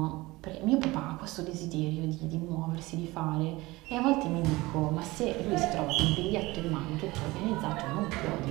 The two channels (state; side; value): quieter; left; 20.9 dB